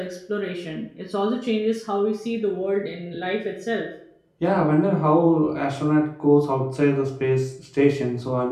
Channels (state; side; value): identical; both; correlation 1.00